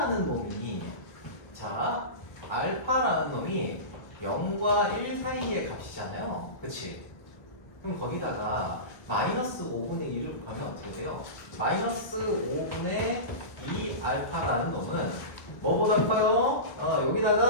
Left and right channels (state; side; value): late; right; 1.2 ms